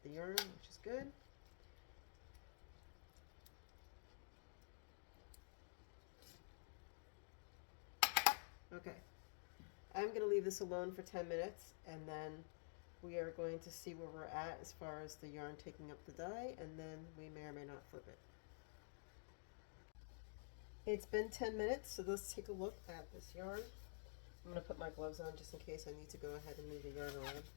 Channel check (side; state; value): right; silent; digital silence